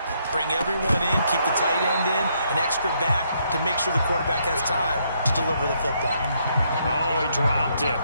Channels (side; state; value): both; inverted; correlation -0.73